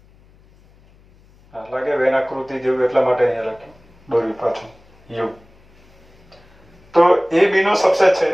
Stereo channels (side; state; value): left; noise; hum, 29 dB below the sound